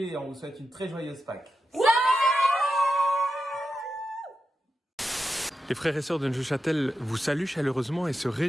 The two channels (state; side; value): normal; both; correlation 0.89